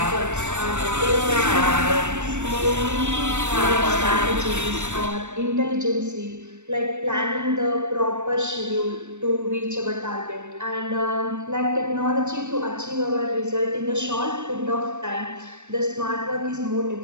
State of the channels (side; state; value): left; late; 0.84 ms